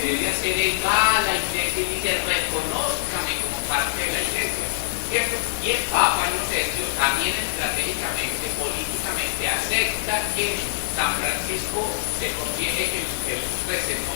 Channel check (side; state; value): right; silent; 56 dB below the other